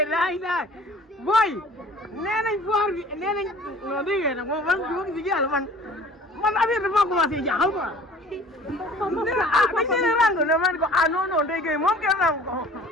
laay booy. nee nañ foire bi nee nañ non dégg nga nag moom man si yàlla man affaire dafa commencé jaaxal quoi. dañ leen rang ne man ko non Ndeye Gueye moom kenn rang ko.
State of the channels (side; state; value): both; normal; correlation 0.48